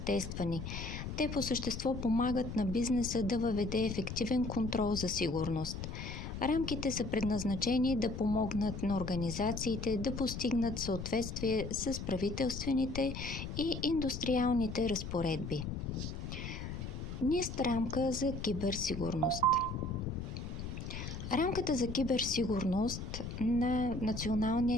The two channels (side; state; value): left; noise; rumble, 7 dB below the sound